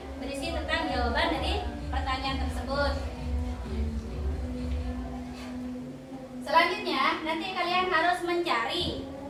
berisi tentang jawaban dari pertanyaan tersebut. Selanjutnya, nanti kalian harus mencari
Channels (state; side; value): identical; both; correlation 1.00